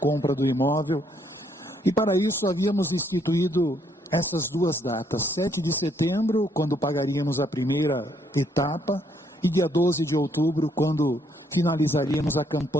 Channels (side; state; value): both; normal; correlation 0.70